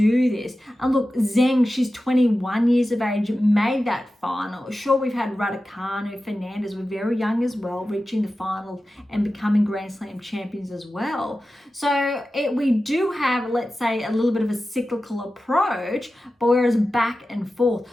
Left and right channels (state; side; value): normal; both; correlation 0.94